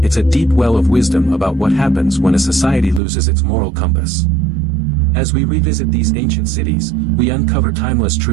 it's a deep well of wisdom about what happens when a society loses its moral compass. As we revisit these ancient cities, we uncover timeless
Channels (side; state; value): left; drops out; at 3.0 s